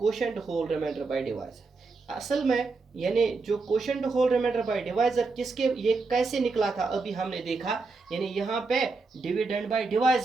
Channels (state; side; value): quieter; left; 4.0 dB